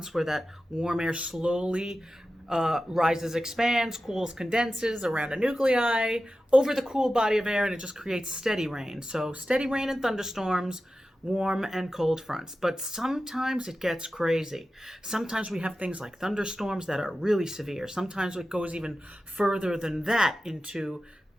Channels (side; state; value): both; normal; correlation 0.93